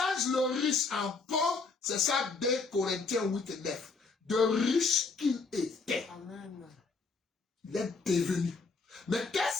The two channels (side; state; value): right; quieter; 4.3 dB